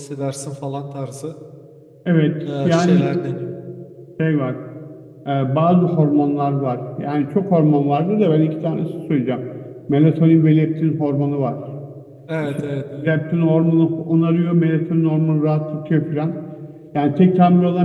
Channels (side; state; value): both; identical; correlation 1.00